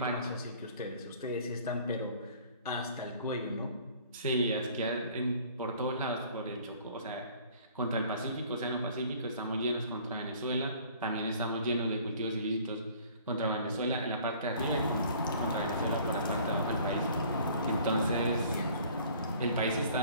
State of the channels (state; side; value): inverted; both; correlation -0.53